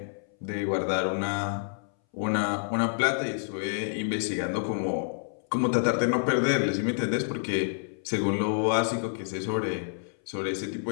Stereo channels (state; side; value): silent; right; 59 dB below the other